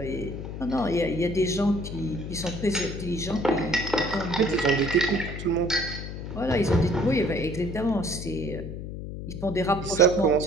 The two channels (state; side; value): noise; left; hum, 8 dB below the sound